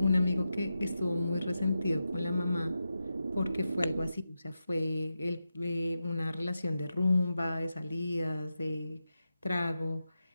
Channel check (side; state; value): both; inverted; correlation -0.90